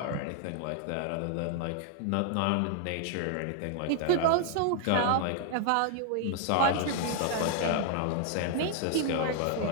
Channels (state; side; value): different; both; correlation 0.00